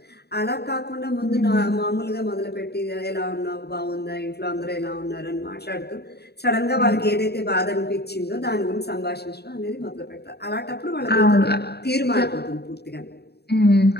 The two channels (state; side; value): late; right; 0.47 ms